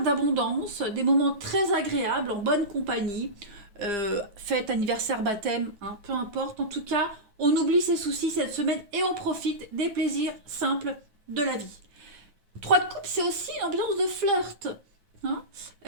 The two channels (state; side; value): late; left; 9.3 ms